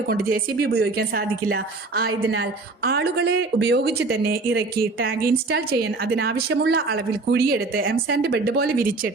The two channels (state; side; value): quieter; left; 3.5 dB